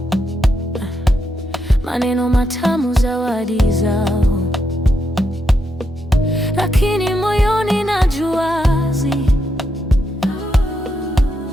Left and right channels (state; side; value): normal; both; correlation 0.82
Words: maneno matamu, zawadi zao, lakini moyoni najua